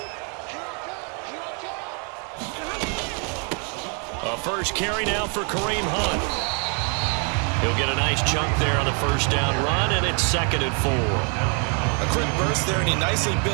First carry now for Kareem Hunt. He'll get a nice chunk there on the first down run, and it's 2nd and 4. A quick burst there, and he nicely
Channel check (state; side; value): quieter; left; 38.0 dB